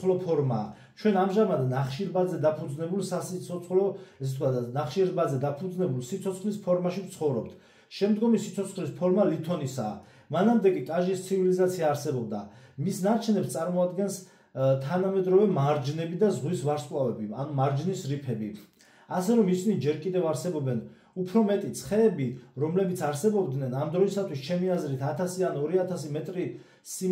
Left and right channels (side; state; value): both; identical; correlation 1.00